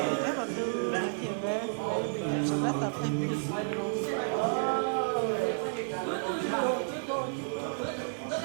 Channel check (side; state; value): left; silent; digital silence